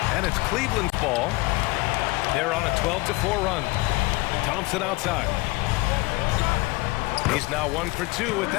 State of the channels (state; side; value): quieter; right; 23.3 dB